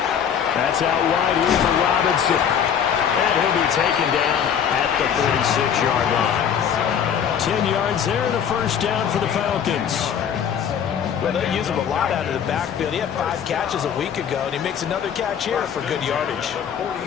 That's out wide here for Robinson. And he'll be taken down at the 46-yard line. 10 yards there and a first down for the Falcons. Well, they use him a lot out of the backfield. He had 5 catches a week ago, and he makes another catch here for good yardage.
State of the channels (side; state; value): right; quieter; 8.2 dB